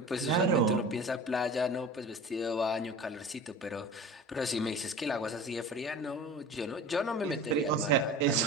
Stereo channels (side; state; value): both; normal; correlation 0.37